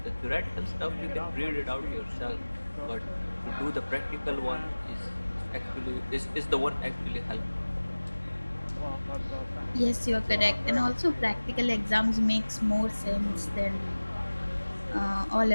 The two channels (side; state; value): both; inverted; correlation -1.00